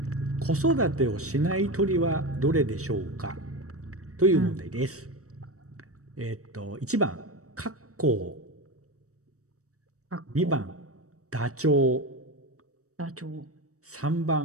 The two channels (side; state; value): left; late; 0.65 ms